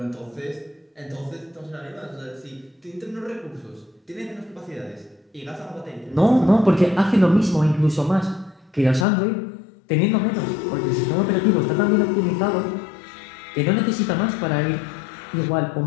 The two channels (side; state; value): right; drops out; at 9.1 s